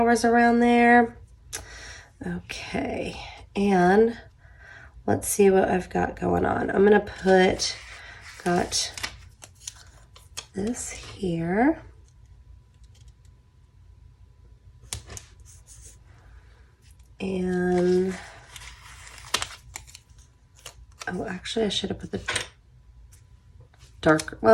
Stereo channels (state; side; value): identical; both; correlation 1.00